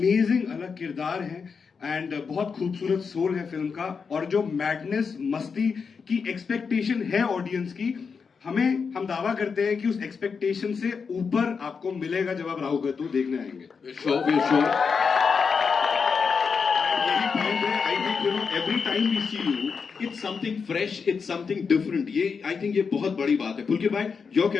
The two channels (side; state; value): right; quieter; 5.6 dB